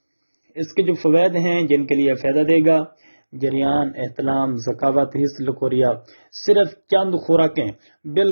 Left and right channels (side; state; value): both; inverted; correlation -1.00